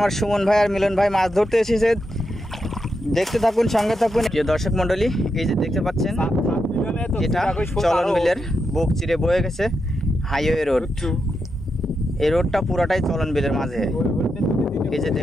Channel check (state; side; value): normal; both; correlation 0.85